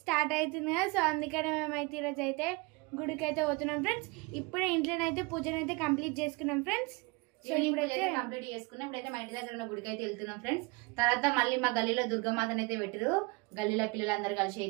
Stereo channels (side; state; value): left; quieter; 26.3 dB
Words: స్టార్ట్ అవుతుంది కదా. సో అందుకనే మేమైతే ఈరోజు అయితే గుడికి అయితే పోతున్నాం ఫ్రెండ్స్. ఇప్పుడే ఇంట్లోనైతే పూజనైతే కంప్లీట్ చేసుకున్నాం ఫ్రెండ్స్. సో ఇప్పుడైతే కంప్లీట్ చేసుకున్నాం. ఇప్పుడైతే మా ఇంటి దగ్గర ఉన్న గుడికి అయితే వెళ్తున్నాం ఫ్రెండ్స్. తర్వాత మళ్ళీ మా గల్లీలో దుర్గమాతను అయితే పెట్టారు. గల్లీలో పిల్లలందరూ కలిసి